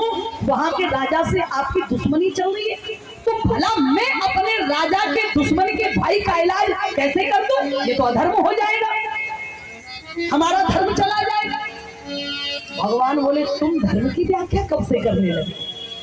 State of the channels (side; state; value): both; identical; correlation 1.00